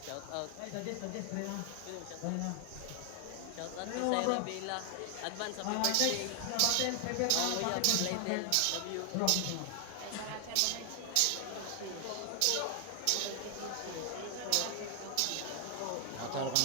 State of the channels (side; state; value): both; different; correlation 0.00